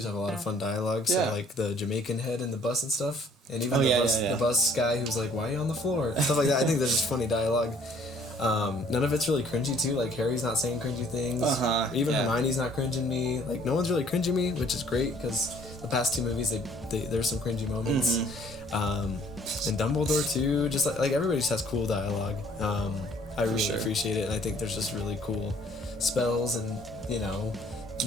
have a lot of fun dialogue. So like the Jamaican head in the bus and stuff, and even the bus guy who's like, "Why are you on the floor?" Stuff like that. I think there's just funny dialogue. None of it's really cringy too. Like, Harry's not saying cringy things. Even Hermione's not cringing me. Like, no one's really cringing me, which is great because the past two movies there's some cringy moments. And Dumbledore too. Just like everybody just has cool dialogue. I really appreciate it, and I think there's just really cool spells and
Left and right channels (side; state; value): both; normal; correlation 0.59